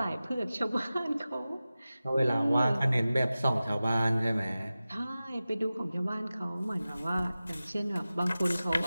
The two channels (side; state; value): both; inverted; correlation -0.96